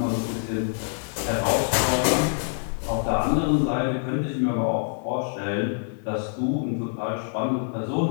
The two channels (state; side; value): silent; right; digital silence